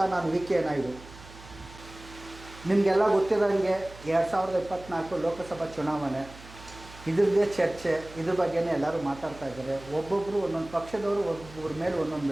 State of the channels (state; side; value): noise; right; hum, 18 dB below the sound